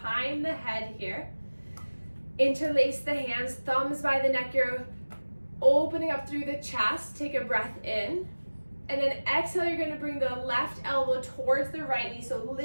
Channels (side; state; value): both; inverted; correlation -1.00